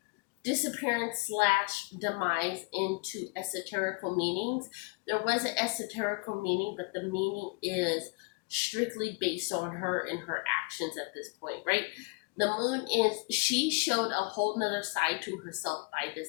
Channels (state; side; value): quieter; right; 30.5 dB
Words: disappearance slash demise into esoterical meanings. There was an esoterical meaning, but the meaning is strictly based on her and her actions at this point, right? The moon is, she showed a whole nother side to herself by